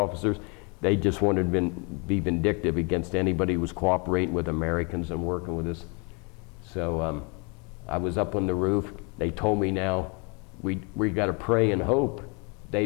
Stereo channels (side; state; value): right; quieter; 32.2 dB